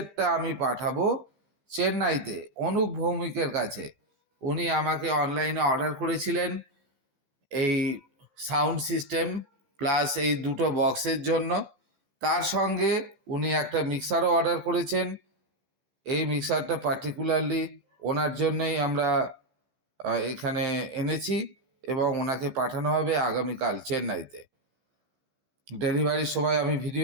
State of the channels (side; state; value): left; late; 15 ms